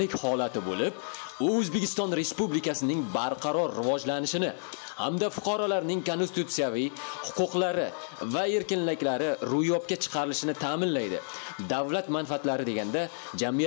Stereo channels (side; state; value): right; silent; digital silence